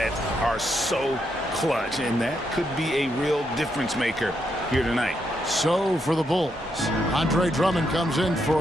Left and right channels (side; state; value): both; normal; correlation 0.79